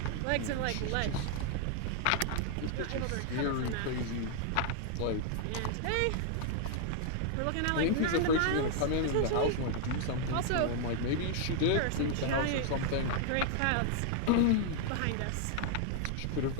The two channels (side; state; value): both; different; correlation 0.00